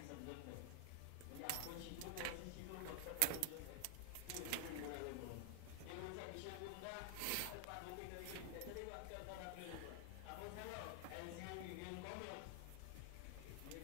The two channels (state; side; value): different; both; correlation 0.00